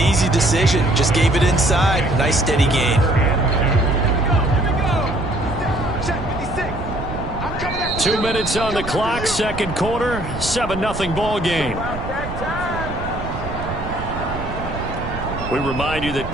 decision. Just gave it inside. Nice steady gain. 2 minutes on the clock, second quarter, 7-0 ball game. We remind you that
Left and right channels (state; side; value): noise; right; rumble, 9 dB below the sound